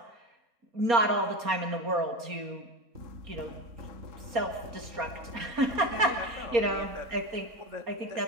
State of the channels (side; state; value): left; late; 4.3 ms